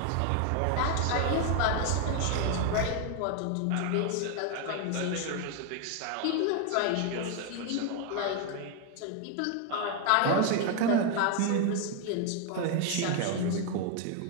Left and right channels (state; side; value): different; both; correlation 0.01